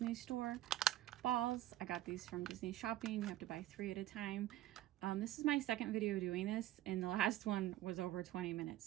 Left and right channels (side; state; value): left; quieter; 14.5 dB